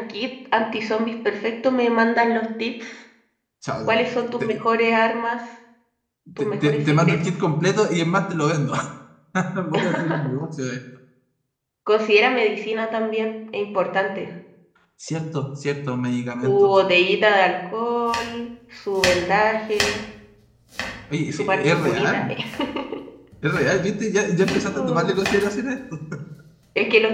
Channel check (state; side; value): identical; both; correlation 1.00